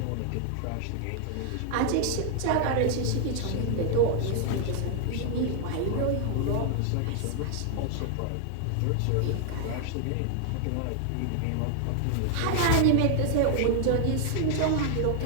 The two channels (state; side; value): different; both; correlation 0.00